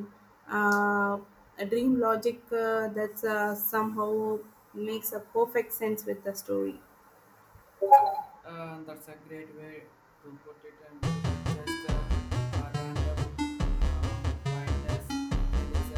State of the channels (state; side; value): identical; both; correlation 1.00